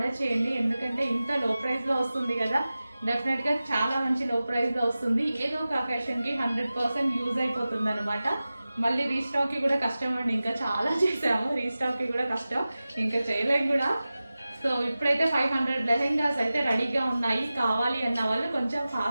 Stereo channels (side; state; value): both; inverted; correlation -0.96